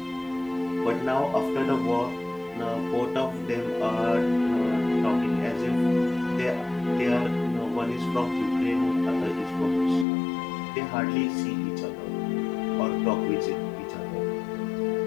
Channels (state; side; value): drops out; right; at 10.1 s